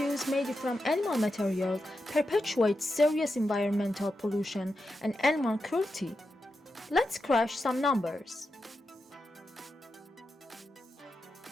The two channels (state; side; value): normal; both; correlation 0.88